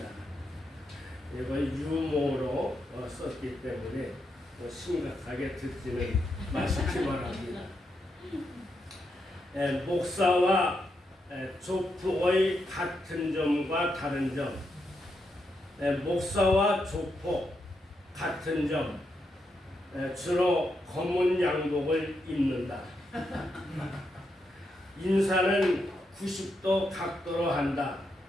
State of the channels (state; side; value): normal; both; correlation 0.82